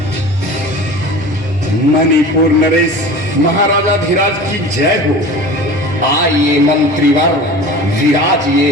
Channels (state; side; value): normal; both; correlation 0.37